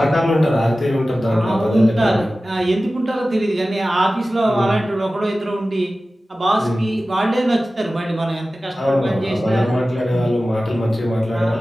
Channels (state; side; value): normal; both; correlation 0.96